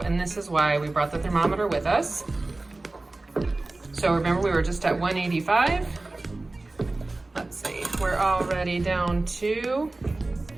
this is why we brought the thermometer with us. So remember, we were just at 185. Let's see, we're already down to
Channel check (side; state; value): left; quieter; 3.1 dB